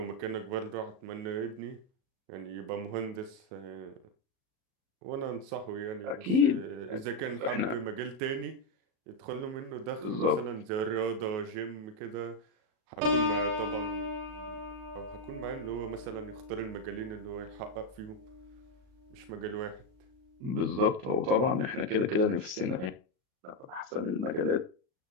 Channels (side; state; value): left; late; 37 ms